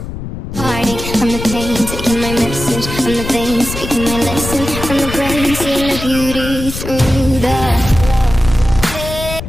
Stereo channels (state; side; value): noise; left; rumble, 8 dB below the sound